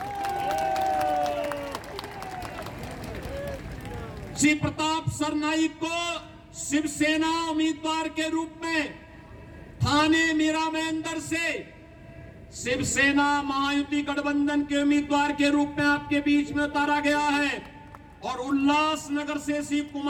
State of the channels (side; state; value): both; identical; correlation 1.00